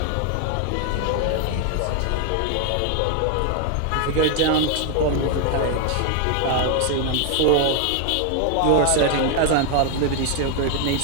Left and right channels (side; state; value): both; different; correlation 0.01